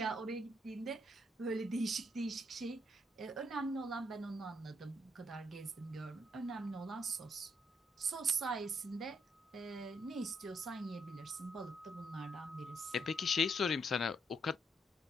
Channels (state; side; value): normal; both; correlation 0.74